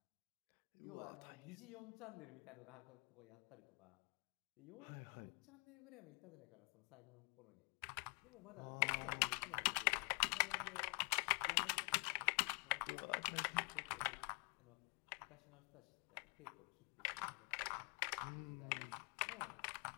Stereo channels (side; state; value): right; quieter; 37.3 dB